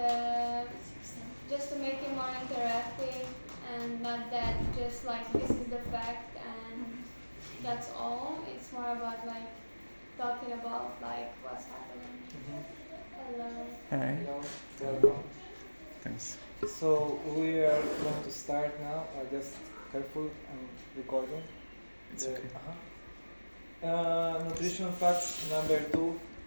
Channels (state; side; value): inverted; both; correlation -1.00